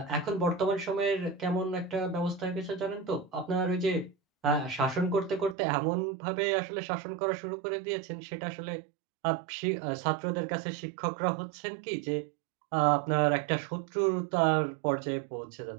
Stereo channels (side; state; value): left; drops out; at 5.6 s